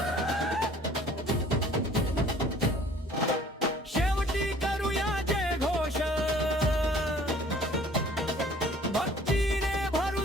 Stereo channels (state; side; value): normal; both; correlation 0.53